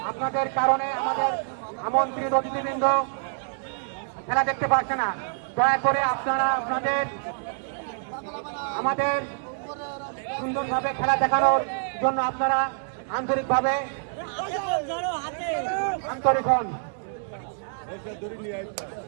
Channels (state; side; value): silent; left; 61 dB below the other